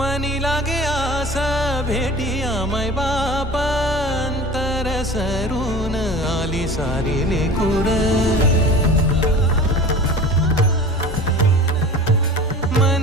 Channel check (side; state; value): both; normal; correlation 0.39